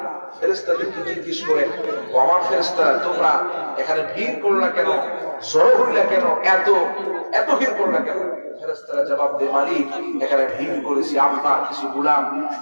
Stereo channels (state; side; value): inverted; both; correlation -1.00